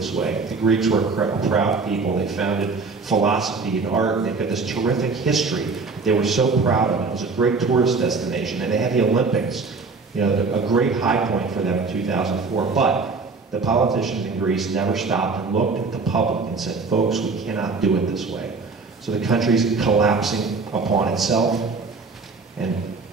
way. The Greeks were a proud people. They founded philosophy and art, and they've got this terrific history. They were so proud of it. It was a great tourist destination, and they had the Olympics, you know, a great high point for them in 2004. But the politicians in Greece never stopped and looked at the public and said, folks, we cannot do it this way. So the country's collapsing upon itself, and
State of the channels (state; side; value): quieter; left; 4.3 dB